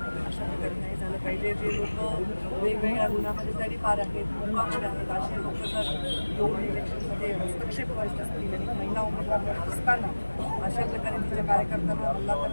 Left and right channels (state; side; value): inverted; both; correlation -1.00